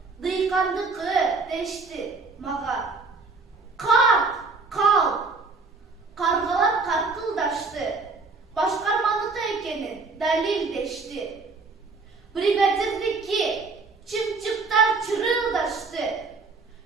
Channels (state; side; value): quieter; left; 4.1 dB